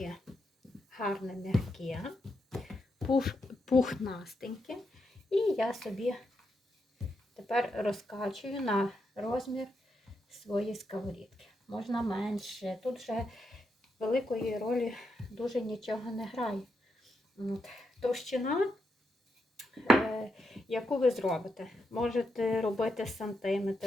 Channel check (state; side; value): normal; both; correlation 0.83